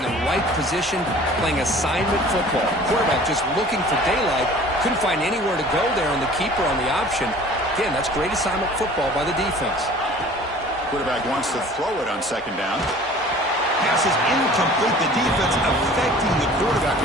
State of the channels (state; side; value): normal; both; correlation 0.47